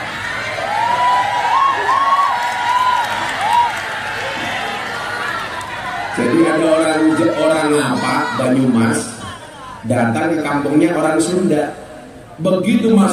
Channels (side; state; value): both; identical; correlation 1.00